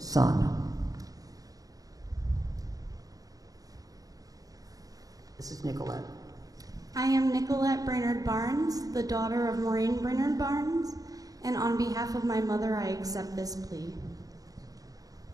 This is Nicolette. I am Nicolette Brainerd Barnes, the daughter of Maureen Brainerd Barnes, and on behalf of my mother, I accept this plea.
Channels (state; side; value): late; left; 0.17 ms